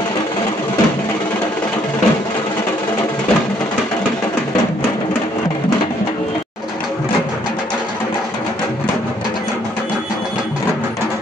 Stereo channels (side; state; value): both; normal; correlation 0.66